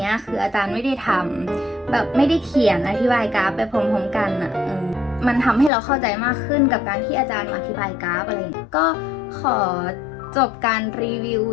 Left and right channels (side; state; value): right; drops out; at 5.7 s